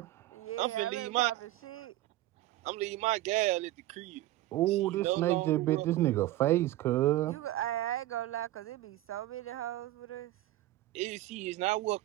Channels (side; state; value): left; quieter; 16.0 dB